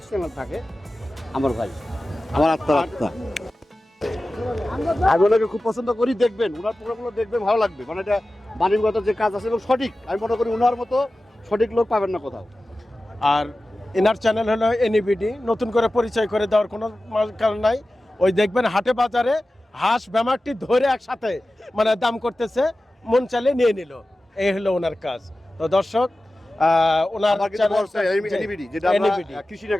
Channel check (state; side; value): normal; both; correlation 0.95